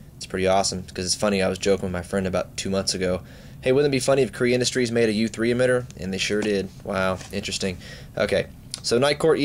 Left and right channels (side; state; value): both; identical; correlation 1.00